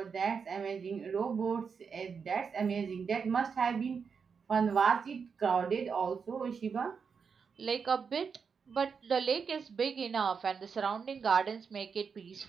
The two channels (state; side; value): quieter; left; 5.9 dB